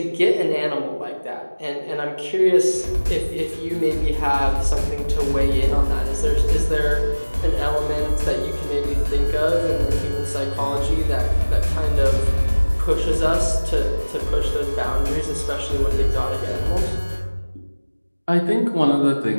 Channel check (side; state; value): both; inverted; correlation -1.00